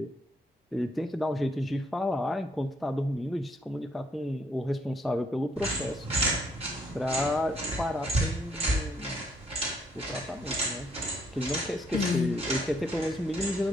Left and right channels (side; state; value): both; normal; correlation 0.70